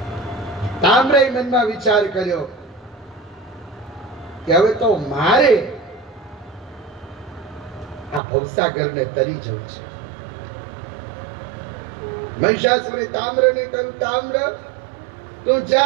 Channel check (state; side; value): drops out; left; at 8.2 s